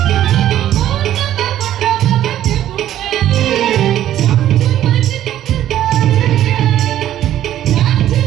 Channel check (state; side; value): quieter; left; 12.1 dB